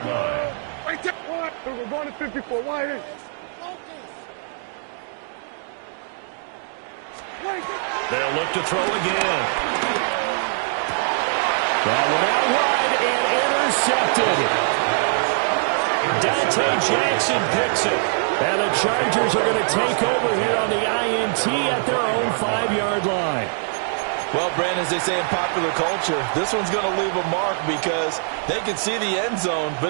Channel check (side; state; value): left; silent; digital silence